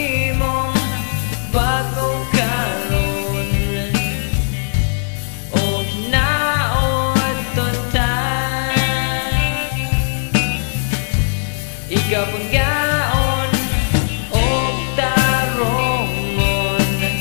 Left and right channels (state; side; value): silent; right; digital silence